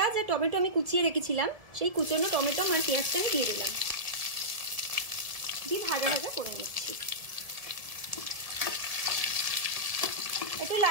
আর টমেটো, আমি কুচিয়ে রেখেছিলাম সেই কুচানো টমেটো আর পেঁয়াজটা আমি দিয়ে দিলাম, দিয়ে ভাজা ভাজা করে নিচ্ছি। একটু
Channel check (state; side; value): late; left; 1.7 ms